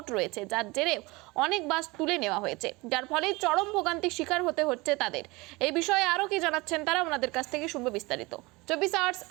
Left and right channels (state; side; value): quieter; left; 23.6 dB